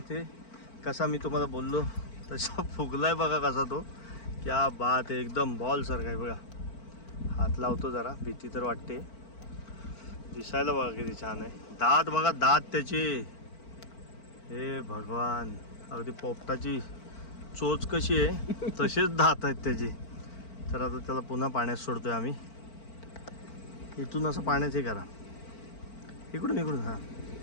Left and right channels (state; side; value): late; right; 4.5 ms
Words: कसा मी तुम्हाला बोललो तसा फुगलाय बघा कसा तो. क्या बात आहे, एकदम बॉल सारखा आहे बघा. हात लावतो जरा, भीती तर वाटते. दिसायला बघा किती छान आहे. दात बघा, दात त्याचे, हे भगवान, अगदी पोपटाची चोच कशी आहे तसेच दात आहेत त्याचे. तर आता त्याला पुन्हा पाण्यात सोडतोय आम्ही. इथून असं पाण्यात हे करा, इकडून इकडून. हा